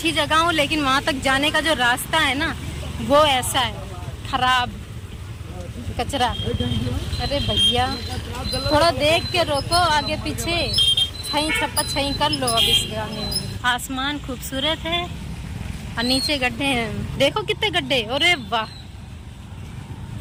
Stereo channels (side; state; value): both; identical; correlation 1.00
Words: जगह हूँ लेकिन वहाँ तक जाने का जो रास्ता है ना वो ऐसा है, खराब, कचरा। अरे भैया थोड़ा देख के रोको, आगे पीछे छई छप्पा छई कर लो। अब इस गाने में आसमान खूबसूरत है और नीचे गड्ढे हैं। देखो कितने गड्ढे, अरे वाह,